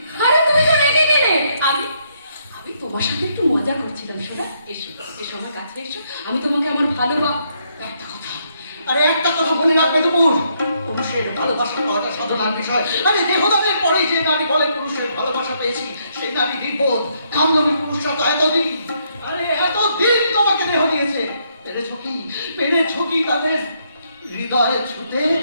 আরে তুমি তো রেগে গেলে। আমি তোমার সাথে একটু মজা করছিলাম। শোনা, এসো এসো আমার কাছে এসো, আমি তোমাকে আমার একটা কথা, আরে একটা কথা মনে রাখবে তো, পুরুষের ভালোবাসা পাওয়াটা সাধনার বিষয়। আরে দেহদানের পরে যে নারী বলে পুরুষের ভালোবাসা পেয়েছি, সেই নারী নির্বোধ। কামলবী পুরুষরা তো এতদিন, আরে এতদিন তোমাকে দেহ দিয়েছে। পেরেছো কি তাদের হৃদয়ে ছুতে?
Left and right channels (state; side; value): inverted; both; correlation -0.74